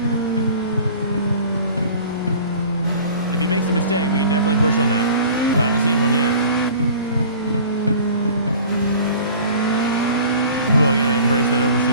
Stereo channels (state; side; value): inverted; both; correlation -0.44